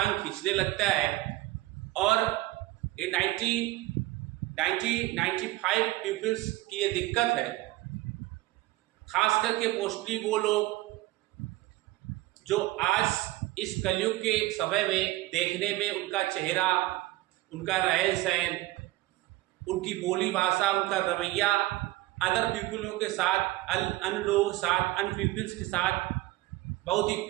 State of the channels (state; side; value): quieter; left; 18.3 dB